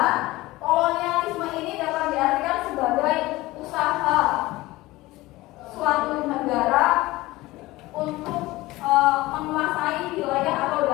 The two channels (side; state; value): right; quieter; 19.2 dB